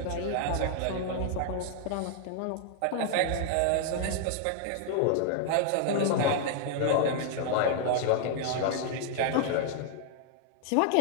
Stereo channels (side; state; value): both; different; correlation 0.00